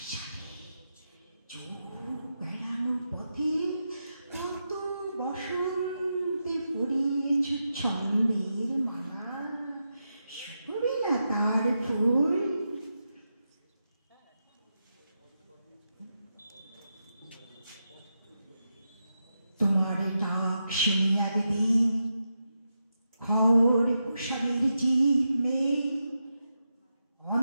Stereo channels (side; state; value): both; inverted; correlation -0.87